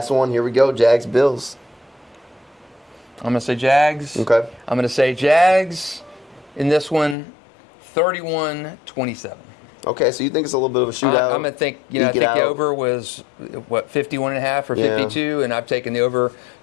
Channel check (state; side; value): drops out; right; at 7.2 s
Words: one. Here we go. Jags, Bills. I'm going to say Jags. Okay. I'm going to say Jags in this one, 31-27. Okay, so you think it's a little bit of a shootout? I'm going to think, I think the over was, 51.5 or 52, and I've taken the over,